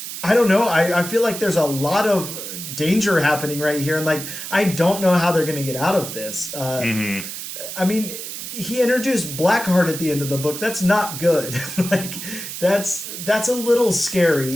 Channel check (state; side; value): noise; right; hiss, 8 dB below the sound